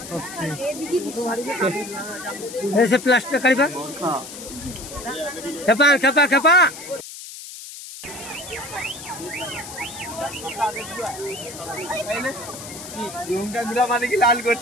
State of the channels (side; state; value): left; noise; hiss, 12 dB below the sound